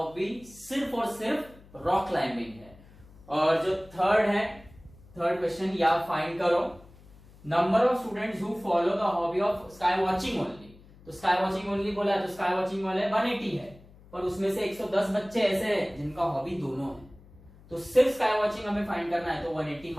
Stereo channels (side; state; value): left; noise; hum, 24 dB below the sound